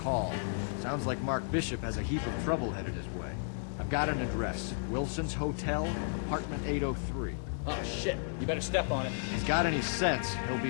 Sounds like Mark Bishop has a heap of trouble headed his way. I've got an address. Wilson's Hotel, apartment 803. Oh shit, you better step on it. If he's got any sense, he'll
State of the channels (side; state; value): right; silent; 56 dB below the other